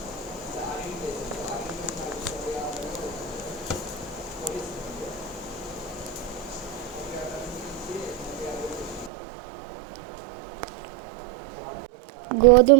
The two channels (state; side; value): drops out; left; at 9.1 s